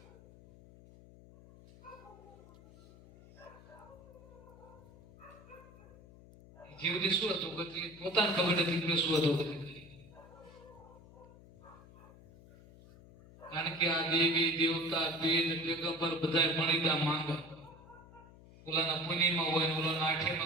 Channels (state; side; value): noise; left; hum, 21 dB below the sound